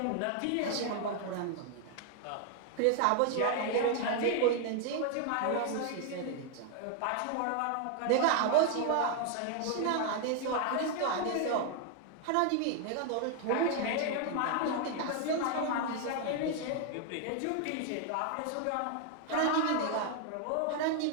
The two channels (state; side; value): different; both; correlation 0.00